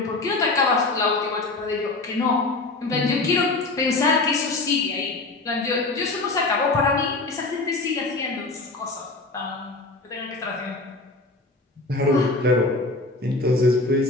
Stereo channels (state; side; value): quieter; right; 3.3 dB